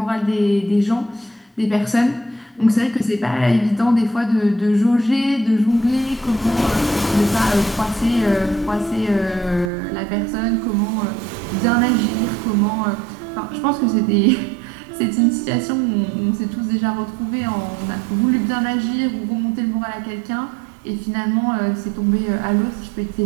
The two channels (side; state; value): left; drops out; at 9.7 s